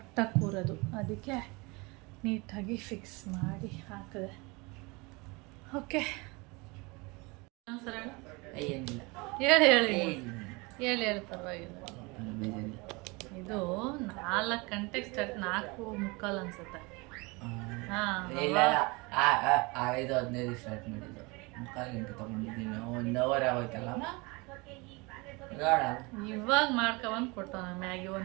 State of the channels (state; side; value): quieter; left; 26.4 dB